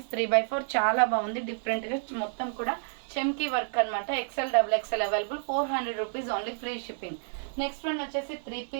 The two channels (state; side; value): silent; left; 58 dB below the other